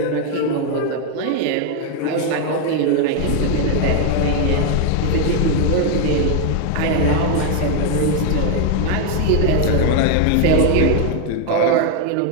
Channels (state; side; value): different; both; correlation 0.01